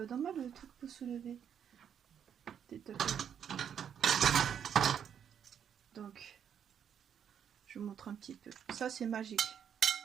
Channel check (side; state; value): left; quieter; 8.4 dB